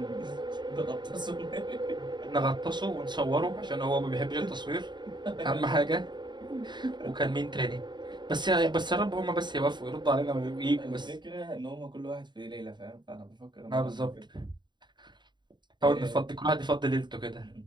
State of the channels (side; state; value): left; late; 0.22 ms